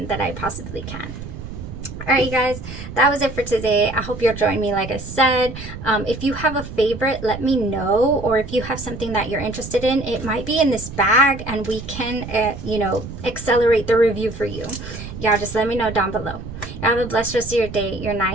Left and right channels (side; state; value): right; noise; rumble, 10 dB below the sound